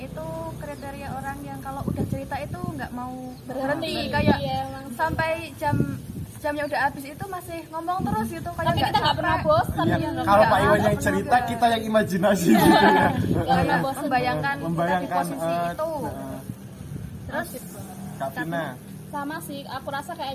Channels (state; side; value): identical; both; correlation 1.00